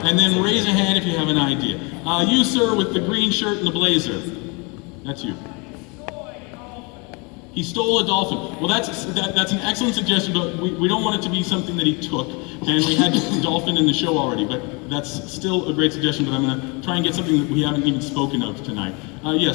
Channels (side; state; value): right; quieter; 30.4 dB